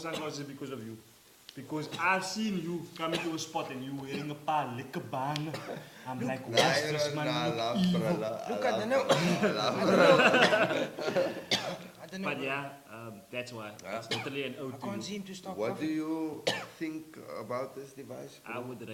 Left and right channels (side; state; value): both; identical; correlation 1.00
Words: is because of you. Because I've seen you coming to a spot and you wearing a paar lekker baan. I'm like, Nah, what's you this know, man? nah, I look love, evil. bro. Look, I don't know. I don't know. But yeah, that's why. It's totally an ode I to can't you. seem to stop What do coughing. you think about this device, I bro? would